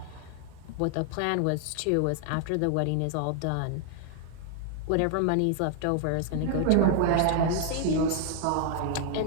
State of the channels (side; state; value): both; different; correlation 0.00